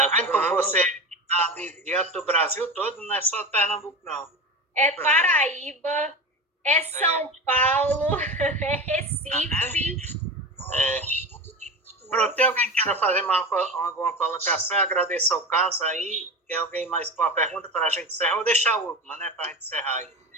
vendo como você está diante do Brasil todo, não é só Pernambuco, não. É Paraíba, é São Paulo, é Recife. Pronto, tem alguém que queira fazer alguma colocação? Agradeço ao Carlos aí. Tem alguém mais com uma pergunta para a gente encerrar? Vou deixar a última, né, para a gente encerrar aí.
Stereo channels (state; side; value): normal; both; correlation 0.26